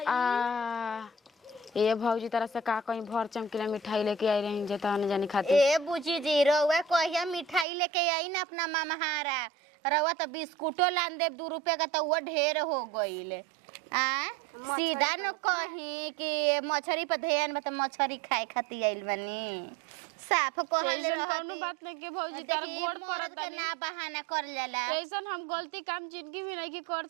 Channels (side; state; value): left; drops out; at 7.7 s